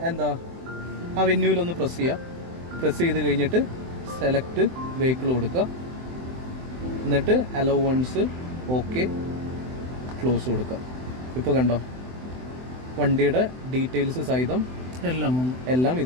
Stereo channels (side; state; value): left; late; 24 ms